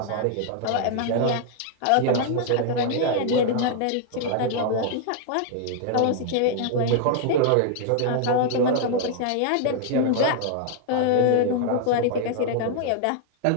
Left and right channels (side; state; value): both; different; correlation 0.00